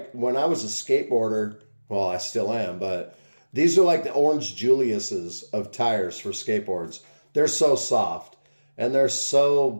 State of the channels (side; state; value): both; inverted; correlation -1.00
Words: when I was a skateboarder, well, I still am, but these are like the Orange Julius's of tires for skateboards. They're so soft, and they're